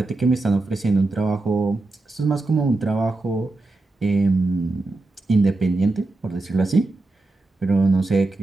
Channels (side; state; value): left; quieter; 3.1 dB